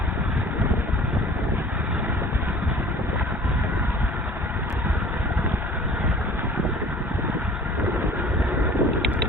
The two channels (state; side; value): normal; both; correlation 0.47